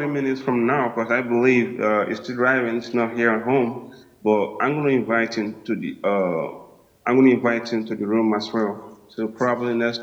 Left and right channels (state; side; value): identical; both; correlation 1.00